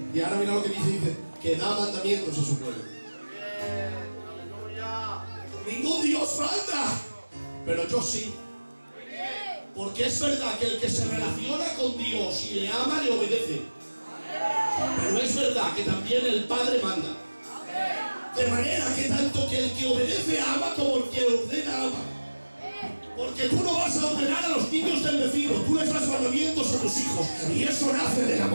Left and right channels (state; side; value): inverted; both; correlation -1.00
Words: Y ahora mira lo que dice, que da mandamientos a su pueblo. Ningún Dios manda, pero yo sí. Porque es verdad que el que se relaciona con Dios y le ama, le obedece. Pero es verdad que también el Padre manda. De manera que tanto que el que obedece ama como el que ordena ama. Porque tú no vas a ordenar a los niños del vecino, tú les das mandamientos a tus hijos y eso nace del